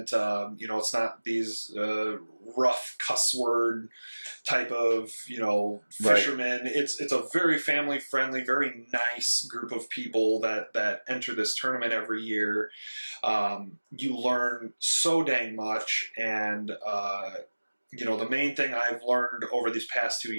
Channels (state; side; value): inverted; both; correlation -1.00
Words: It's not these rough cuss word type of, fishermen. Right. It's a very family friendly, very nice group of people that enter this tournament every year. You learn so dang much, and the main thing I've learned over these past 2